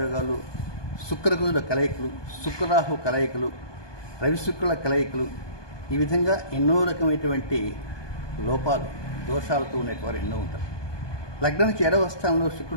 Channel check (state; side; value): late; right; 1.2 ms